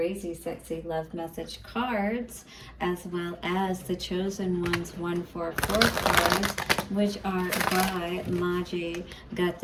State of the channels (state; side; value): identical; both; correlation 1.00